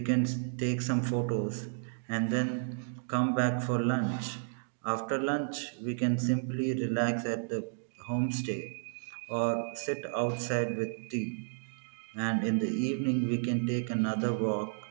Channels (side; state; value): left; silent; digital silence